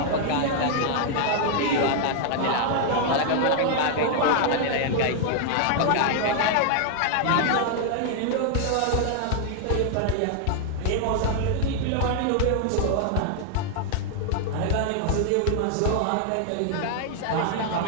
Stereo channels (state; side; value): different; both; correlation 0.00